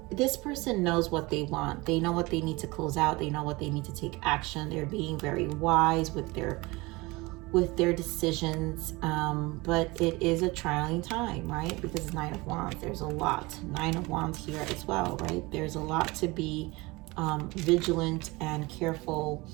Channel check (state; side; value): quieter; left; 23.2 dB